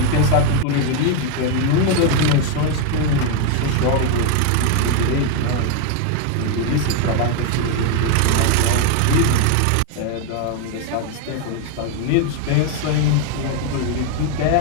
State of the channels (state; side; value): different; both; correlation 0.01